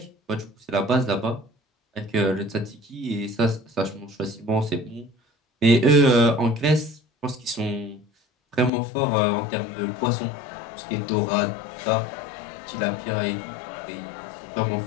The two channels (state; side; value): drops out; right; at 8.7 s